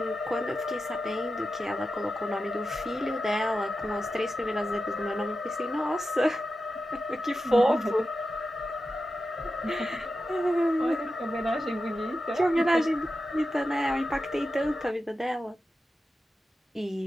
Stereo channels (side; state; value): both; normal; correlation 0.91